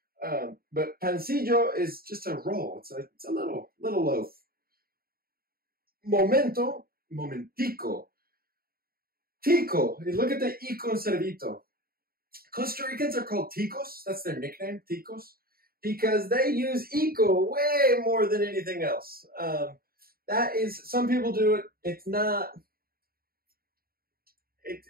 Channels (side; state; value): left; late; 0.43 ms